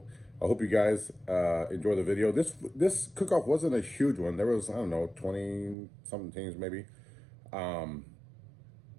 I hope you guys enjoy the video. This cook-off wasn't a huge one. There was, I don't know, 20 something teams maybe.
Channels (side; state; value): left; drops out; at 5.8 s